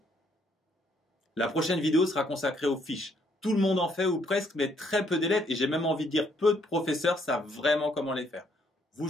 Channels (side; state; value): both; normal; correlation 0.69